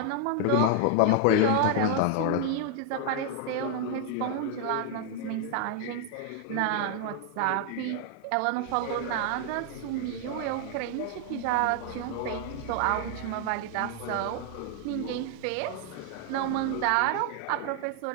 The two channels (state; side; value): different; both; correlation 0.00